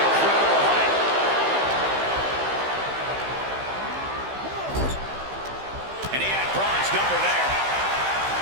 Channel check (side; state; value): left; late; 15 ms